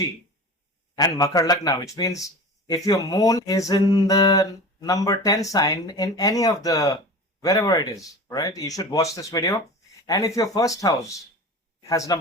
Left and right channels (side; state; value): both; normal; correlation 0.34